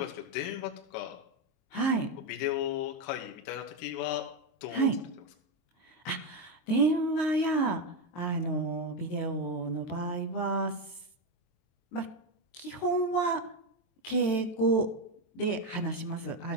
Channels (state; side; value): late; right; 22 ms